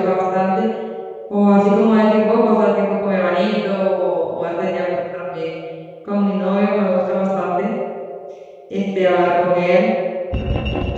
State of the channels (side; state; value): both; identical; correlation 1.00